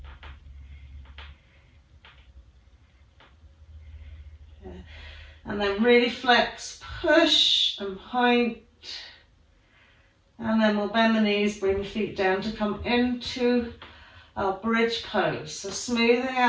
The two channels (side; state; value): both; identical; correlation 1.00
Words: And then really flex, push and point. And then we'll bend the knees, bring the feet down to come into our bridge pose. So smoothing